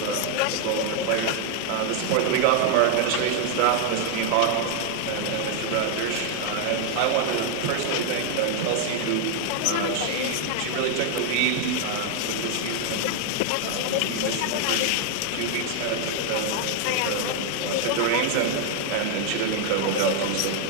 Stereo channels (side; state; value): both; different; correlation 0.00